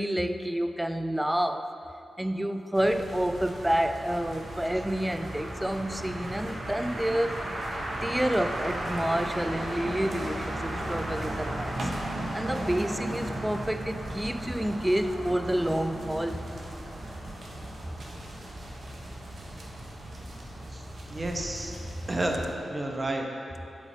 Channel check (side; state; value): both; normal; correlation 0.96